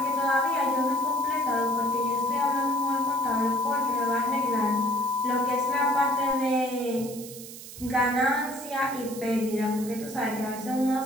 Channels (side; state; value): right; noise; hiss, 14 dB below the sound